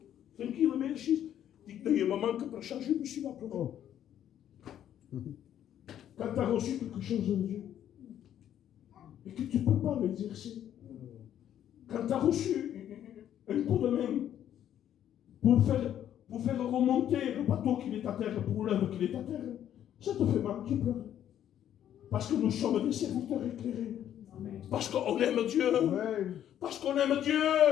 tranquille, mais assise. Je dis qu'il y a un moment que pour changer, je me suis là pleuré. Quand tu as reçu quelque chose de Dieu, et que tu ne peux pas l'exercer, quand tu as reçu un coup de main pour faire remonter le bateau qui est à terre, pour l'œuvre qui est à terre, ça te fait mal, tu pleures. Parce que nous sommes des serviteurs éclairés. Parce qu'on aime Dieu. Parce qu'on aime Dieu.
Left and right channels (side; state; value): right; quieter; 10.6 dB